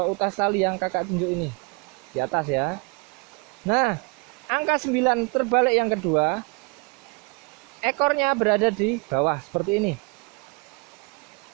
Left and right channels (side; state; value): left; quieter; 31.0 dB